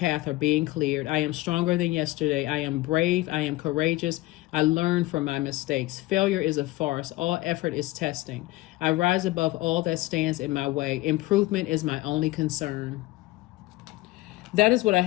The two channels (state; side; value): quieter; right; 19.2 dB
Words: are being cleared. I am stronger than yesterday. I am brave. I am courageous. I learn from my mistakes. Failure is a farce. All effort is testing. I rise above all that stands in my way. Improvement is my only concern. that is what I